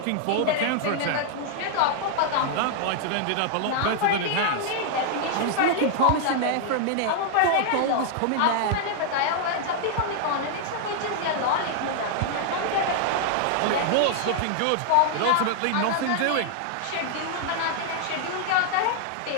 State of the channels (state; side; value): different; both; correlation -0.01